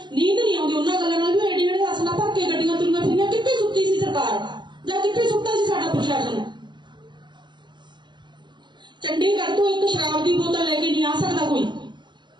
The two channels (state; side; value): late; left; 0.22 ms